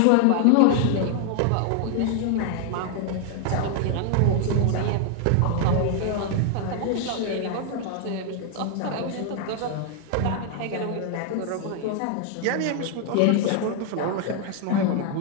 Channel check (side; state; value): both; different; correlation 0.00